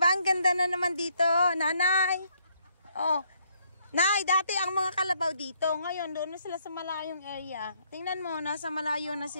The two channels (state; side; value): inverted; both; correlation -0.70